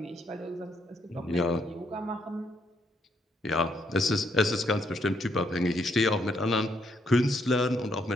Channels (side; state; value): both; normal; correlation 0.74